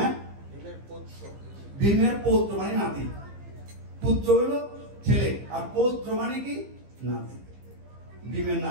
ভীমের পৌত্র মানে নাতি। পুত্র হলো ছেলে, আর পৌত্র মানে কি? নাতি। ভীমের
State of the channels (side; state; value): left; late; 15 ms